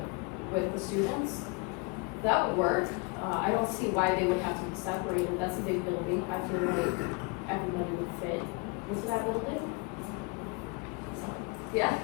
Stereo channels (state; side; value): quieter; right; 28.9 dB